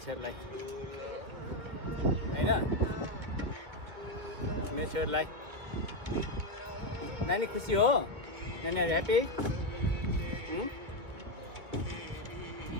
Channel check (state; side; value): late; left; 2.3 ms